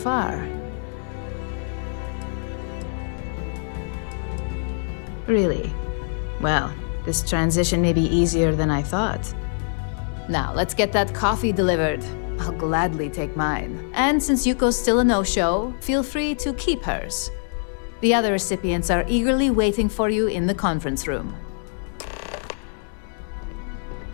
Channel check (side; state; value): right; silent; 58 dB below the other